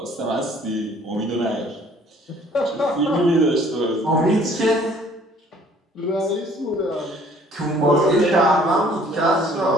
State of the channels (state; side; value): normal; both; correlation 0.57